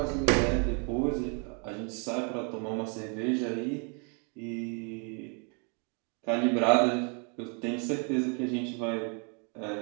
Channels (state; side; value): quieter; left; 37.8 dB